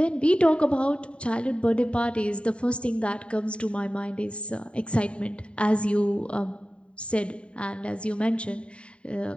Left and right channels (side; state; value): right; late; 0.058 ms